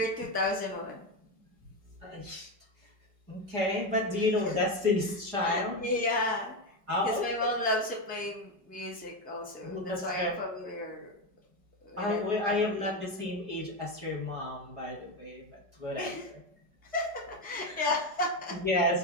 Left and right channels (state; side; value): late; left; 4.8 ms